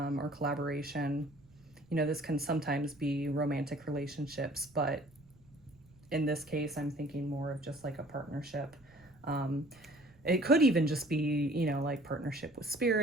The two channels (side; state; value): right; noise; rumble, 27 dB below the sound